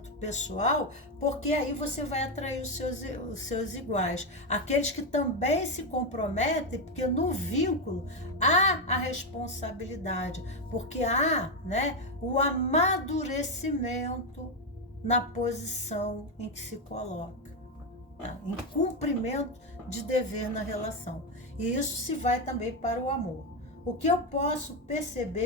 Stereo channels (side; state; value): both; normal; correlation 0.08